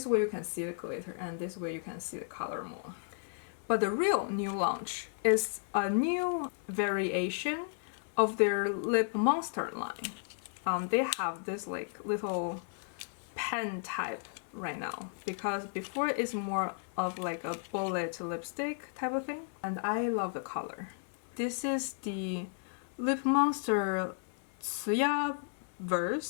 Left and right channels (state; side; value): silent; right; 55 dB below the other